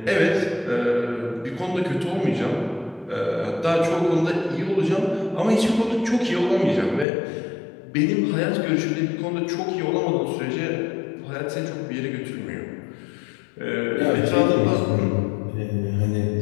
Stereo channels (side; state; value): right; drops out; at 7.1 s